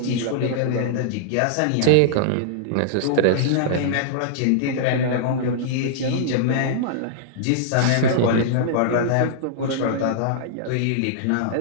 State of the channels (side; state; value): both; different; correlation -0.02